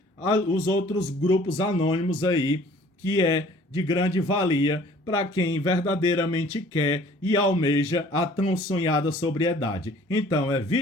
os outros grupos anônimos aí, que é de grande valia para quem verdadeiramente quer e almeja a tão sonhada sobriedade. Então,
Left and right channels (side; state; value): both; normal; correlation 0.53